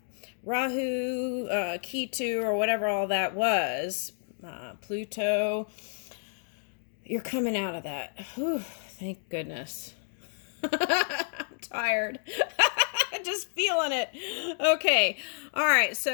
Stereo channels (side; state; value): right; silent; digital silence